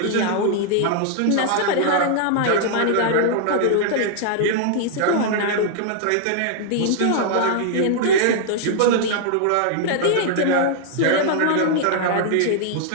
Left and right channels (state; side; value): different; both; correlation -0.01